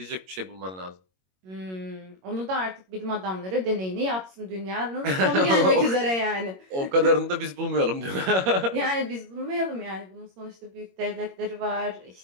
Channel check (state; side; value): late; left; 21 ms